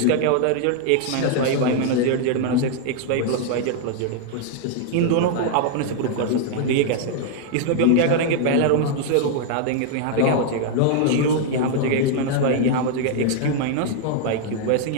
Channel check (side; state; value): both; different; correlation 0.00